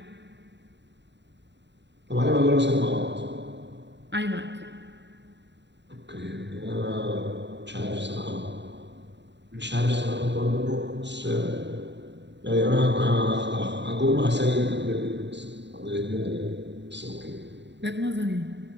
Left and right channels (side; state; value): left; late; 0.52 ms